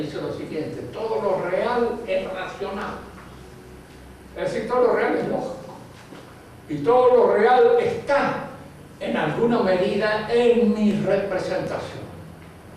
lo siguiente: todo lo real es racional. Es decir, todo lo real es lógico. Y todo lo real está, en alguna medida, en mi representación.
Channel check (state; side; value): identical; both; correlation 1.00